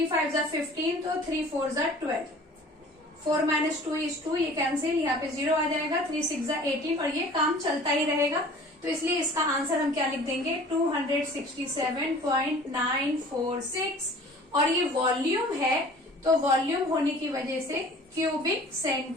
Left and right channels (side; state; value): both; normal; correlation 0.47